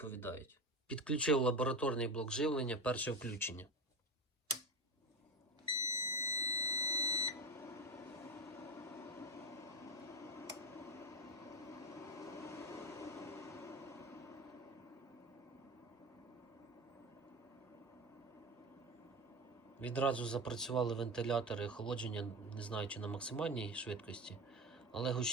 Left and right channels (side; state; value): both; normal; correlation 0.24